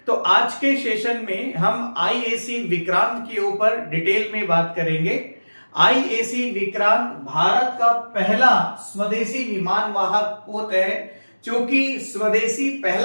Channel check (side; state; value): both; inverted; correlation -1.00